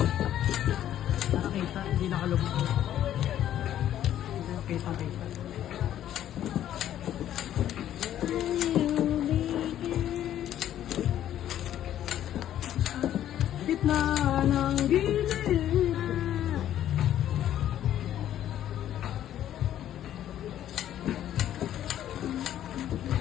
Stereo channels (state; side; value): quieter; right; 11.5 dB